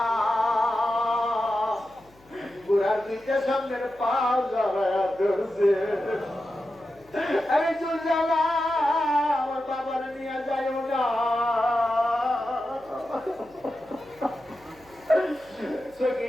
ঘোড়ার নিচে সামনের পাও জ্বালায়া ধরছে। আরে জুলজালা, আমার বাবার নিয়ে যাইও না।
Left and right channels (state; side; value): noise; left; hum, 28 dB below the sound